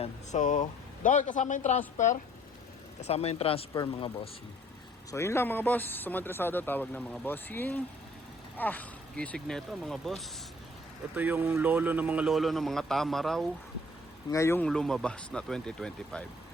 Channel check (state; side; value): normal; both; correlation 0.57